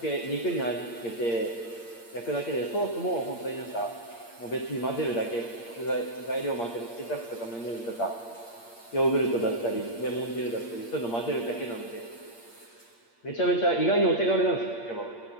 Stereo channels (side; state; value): right; late; 8.6 ms